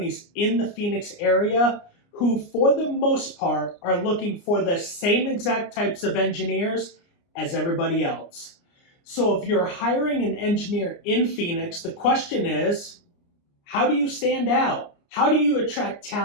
in the Phoenix area who, for the most part, are looking for the same exact types of engineers as everybody else. So if you're hiring an engineer in Phoenix, the question is, how do you stand out? How do you attract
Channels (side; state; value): right; late; 29 ms